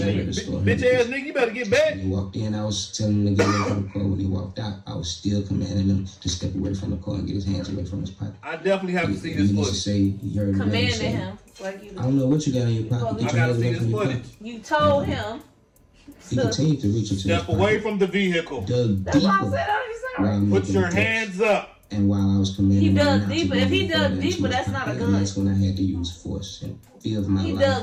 out shit. of the store. Bitch ass nigga, you better get back. When he walked in, I was telling him to get away from the car. When he walked out, I was still commanding him to step away from the car and get his hands away from his pocket. I definitely have to see He this needs to footage. say he heard the man Commanding say, him. Like you I don't know what you got in your pocket. Get I your gotta hands see away this from your footage. pocket. You told him. He continued to reach into his Step away pocket, from the vehicle. dug That's why I deeper said I while was I'm Put making your the threats. hands up. And while I was commanding He him dug not to deeper. go If he any dug further into deeper, his that's not a pocket, gun. and that's when I had to use force and fear of my He life.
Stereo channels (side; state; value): both; identical; correlation 1.00